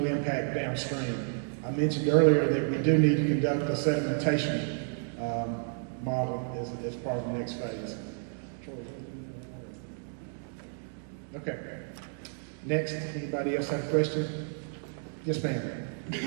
impact downstream. I mentioned earlier that we do need to conduct a sedimentation model as part of the next phase. Okay. Next, anybody else have a question? Yes, ma'am.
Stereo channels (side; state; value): left; silent; 57 dB below the other